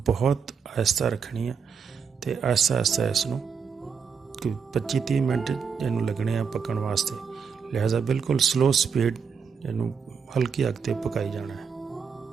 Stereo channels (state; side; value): quieter; left; 6.3 dB